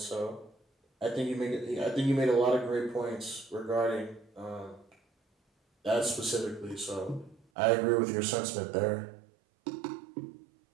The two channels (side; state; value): left; drops out; at 7.4 s